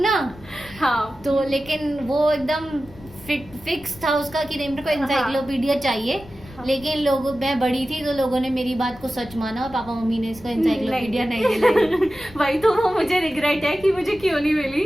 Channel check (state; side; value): noise; left; rumble, 20 dB below the sound